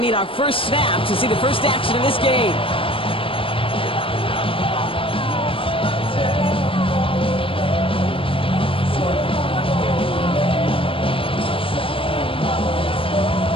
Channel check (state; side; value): late; right; 0.26 ms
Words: our first snap to see the first action of this game.